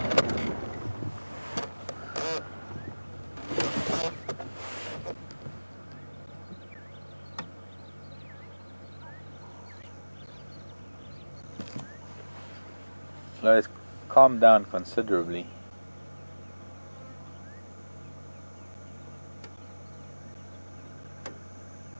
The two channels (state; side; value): inverted; both; correlation -1.00